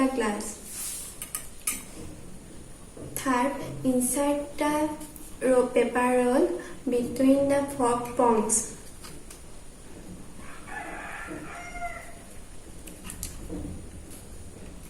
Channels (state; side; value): identical; both; correlation 1.00